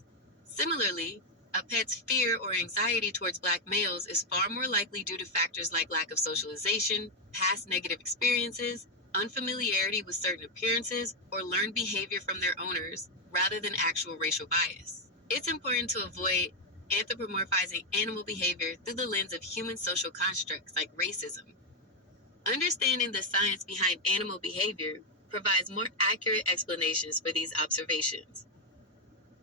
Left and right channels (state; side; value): normal; both; correlation 0.02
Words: Similarly, a pet's fear or anxiety towards Black males is far more likely due to factors like lack of socialization, past negative experiences, unfamiliarity with certain appearances, or learned behavior from their owners, rather than actual racial bias. It's important to avoid anthropomorphizing animal behavior through the lens of human social constructs like racism. Understanding the science behind animal behavior provides more accurate explanations for these observations.